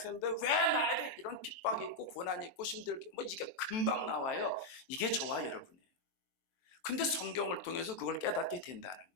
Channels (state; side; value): late; right; 23 ms